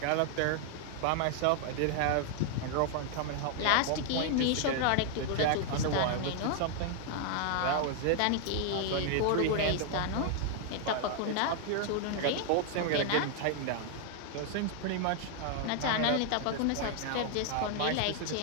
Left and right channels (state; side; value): different; both; correlation 0.00